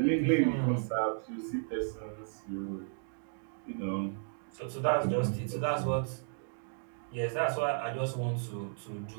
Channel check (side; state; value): left; silent; digital silence